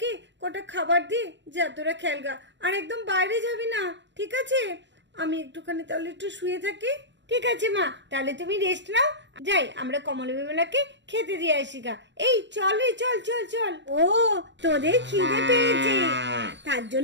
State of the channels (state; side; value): late; left; 0.52 ms